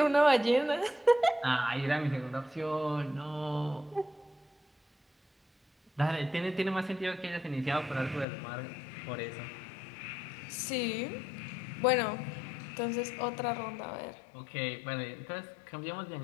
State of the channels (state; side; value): drops out; right; at 8.2 s